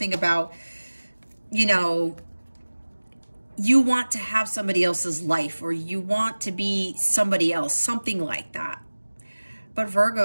about, you know, you want to have somebody else's life, or you want to be somebody else, something like that. But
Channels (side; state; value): both; inverted; correlation -1.00